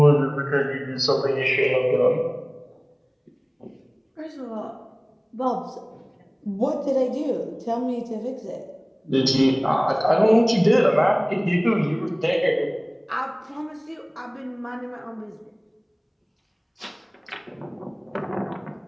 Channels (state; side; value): identical; both; correlation 1.00